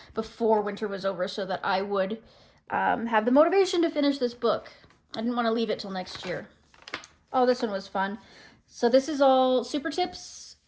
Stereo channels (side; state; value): both; identical; correlation 1.00